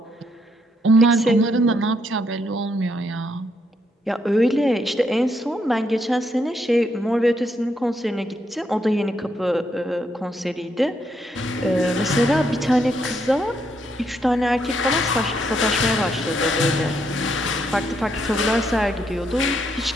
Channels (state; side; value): normal; both; correlation 0.76